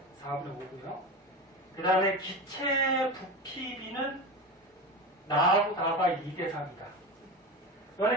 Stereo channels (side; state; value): both; normal; correlation 0.25